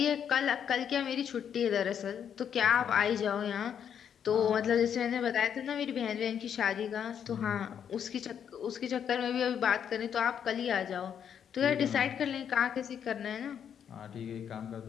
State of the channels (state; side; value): quieter; right; 8.4 dB